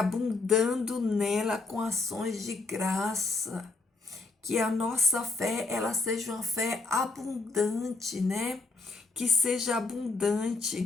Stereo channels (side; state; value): right; quieter; 3.7 dB